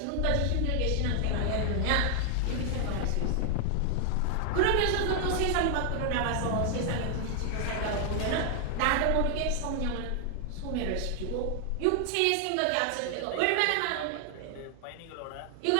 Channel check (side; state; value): both; different; correlation 0.00